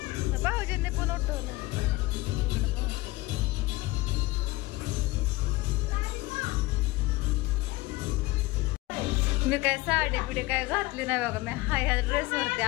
भाऊजींनी पण उठवलं. मी काय साडी बिडी काय घातली नाही बघा. मी ह्या ड्रेसवरती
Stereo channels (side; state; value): right; quieter; 20.5 dB